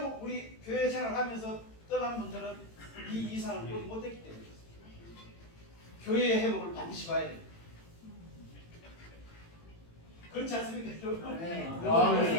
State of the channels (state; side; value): late; right; 18 ms